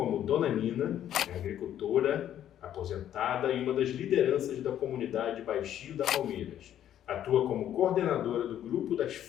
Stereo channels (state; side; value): quieter; right; 11.0 dB